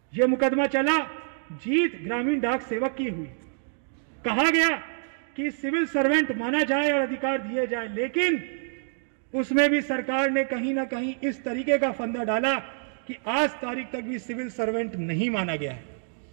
यह मुकदमा चला, जीत ग्रामीण डाक सेवक की हुई। कहा गया कि सिविल सर्वेंट माना जाए और अधिकार दिए जाए, लेकिन उसमें भी सरकार ने कहीं ना कहीं इस तरीके का फंदा डाला कि आज तारीख तक भी सिविल सर्वेंट नहीं माना गया है।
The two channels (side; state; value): left; silent; digital silence